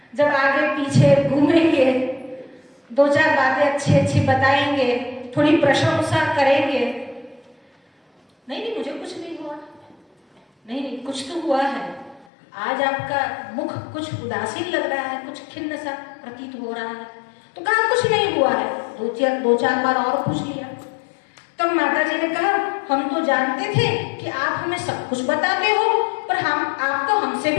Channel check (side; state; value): right; drops out; at 12.2 s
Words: जब आगे पीछे घूमेंगे, 2-4 बातें अच्छी बताएंगे, थोड़ी प्रशंसा करेंगे। नहीं मुझे कुछ नहीं हुआ। नहीं कुछ तो हुआ है। आज आपका मुख कुछ उदासीन लग रहा है, कुछ खिन्न सा प्रतीत हो रहा है। तो कहा कुछ नहीं हुआ है। 2-4 बार और पूछ लिया। तब माता जी ने कहा, हम तो जानते थे कि आप हमें सब कुछ बताते हो, पर आप तो हमसे